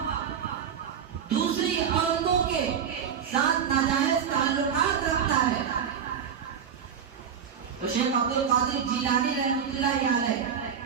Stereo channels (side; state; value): left; quieter; 7.7 dB